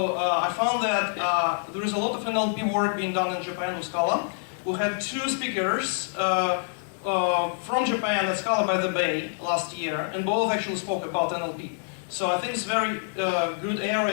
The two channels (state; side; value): silent; right; digital silence